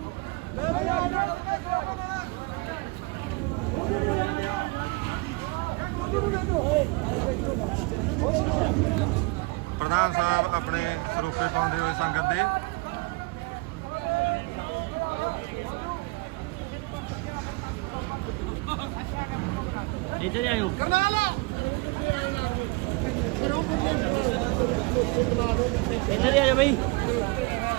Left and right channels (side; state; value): left; quieter; 25.6 dB